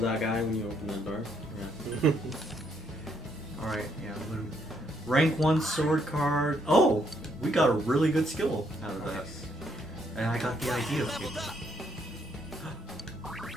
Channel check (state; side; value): normal; both; correlation 0.72